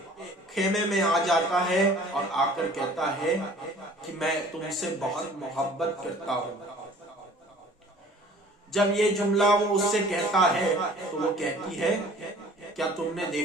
خیمے میں آ جاتا ہے اور آ کر کہتا ہے کہ میں تم سے بہت محبت کرتا ہوں۔ جب یہ جملہ وہ اس سے کہتا ہے تو وہ کہتی ہے کیا تم نے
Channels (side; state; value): both; normal; correlation 0.50